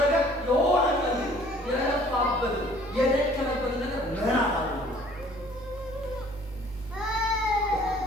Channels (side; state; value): both; normal; correlation 0.55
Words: የሆነ ቀን የለፋበት የደከመበት ነገር መናት አለ።